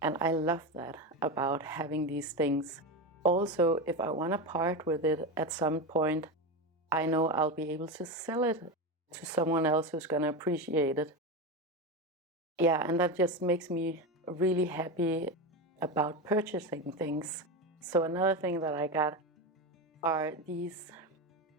I love that about having these things. Also, if I want to part with it at some point, I know I'll be able to sell it to someone else who's going to appreciate it. Yeah, and that just makes me really happy about purchasing things. So another thing that I got are these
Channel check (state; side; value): normal; both; correlation 0.18